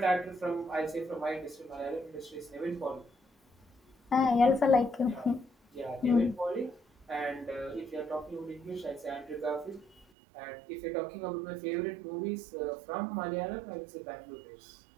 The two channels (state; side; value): drops out; left; at 10.1 s